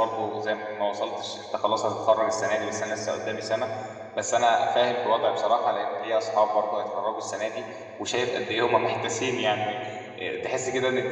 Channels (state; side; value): identical; both; correlation 1.00